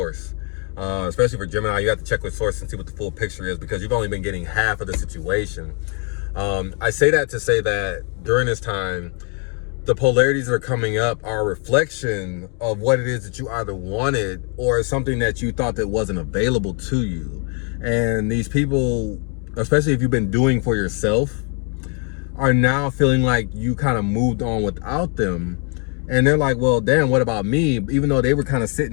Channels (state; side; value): quieter; right; 38.5 dB